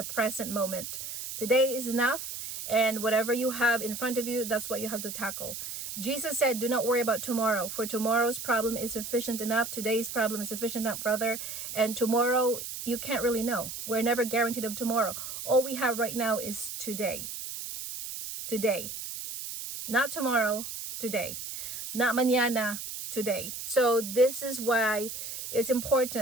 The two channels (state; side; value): noise; right; hiss, 7 dB below the sound